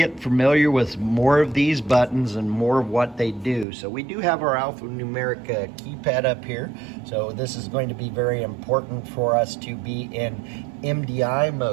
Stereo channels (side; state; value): left; drops out; at 3.7 s